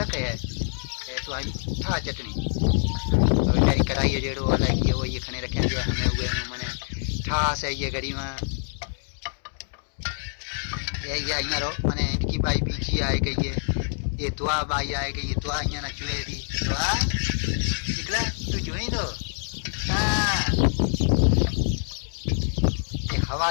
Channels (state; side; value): silent; right; digital silence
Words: है तो आई ठा चटनी तो बेचारी कढ़ाई जेड़ो अलग ये वो ये खने रखे हमें हुए मैंने ठास है ये घड़ी में ये अँ रो मैंने इनकी बाई बीजी आए गई है। ये दुआ बाई आए गई ये दुआ अँ ना चुए दी दुआ निकला तू जुई दो। ये